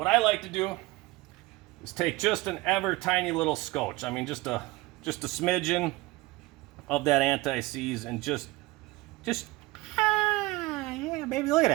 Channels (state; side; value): quieter; left; 20.8 dB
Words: I like to do is take just an ever tiny little scotch. I mean, just a smidgen of that anti-seize, and just yeah, baby, look at